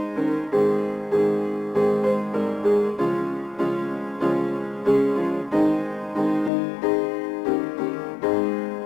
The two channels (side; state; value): right; drops out; at 6.5 s